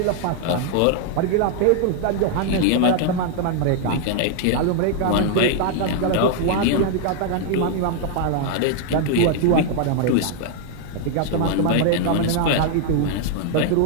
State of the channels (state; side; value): different; both; correlation 0.00